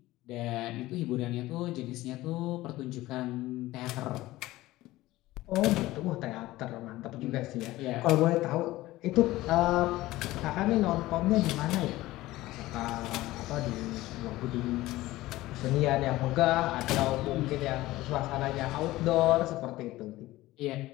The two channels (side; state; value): right; quieter; 17.5 dB